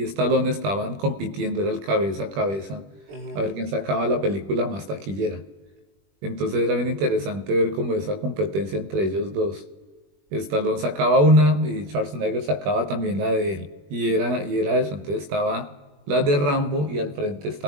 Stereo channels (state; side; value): late; left; 21 ms